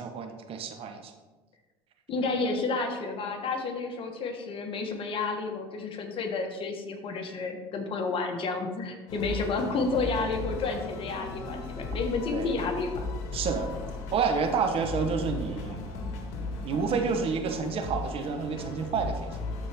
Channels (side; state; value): both; normal; correlation 0.37